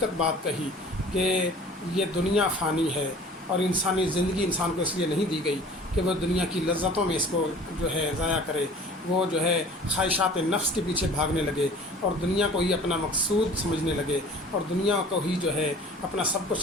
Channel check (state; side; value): normal; both; correlation 0.46